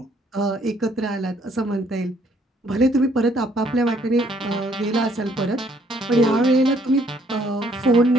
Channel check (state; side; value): normal; both; correlation 0.65